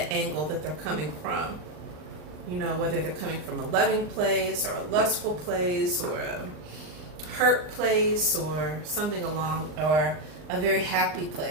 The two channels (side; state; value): left; late; 39 ms